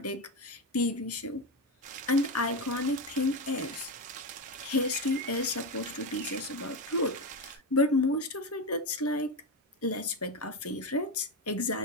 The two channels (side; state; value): both; normal; correlation 0.14